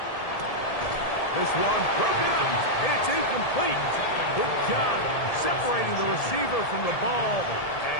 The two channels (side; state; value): right; late; 1.7 ms